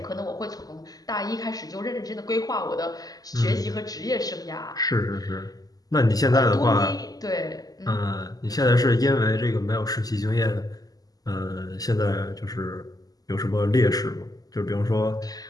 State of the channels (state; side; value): late; right; 0.18 ms